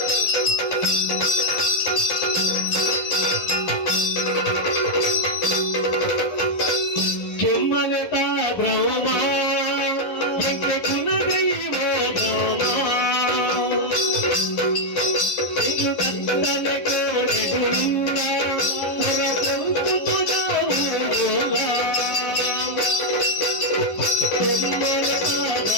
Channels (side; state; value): right; late; 12 ms